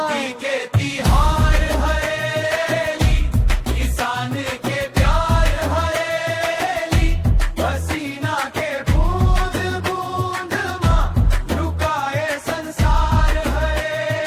के तिहार हरेली, किसान के प्यार हरेली, पसीना के बूंद बूंद मां लुकाए संसार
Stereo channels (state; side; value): identical; both; correlation 1.00